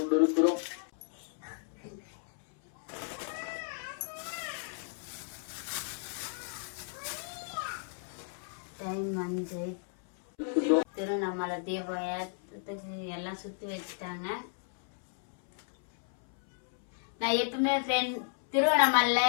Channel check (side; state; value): right; silent; 56 dB below the other